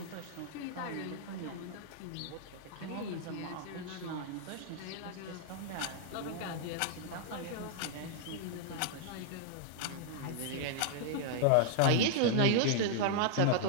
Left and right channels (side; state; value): both; different; correlation -0.01